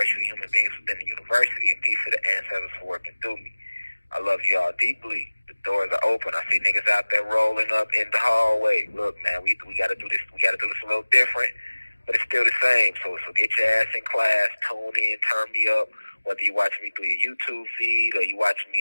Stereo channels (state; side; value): inverted; both; correlation -1.00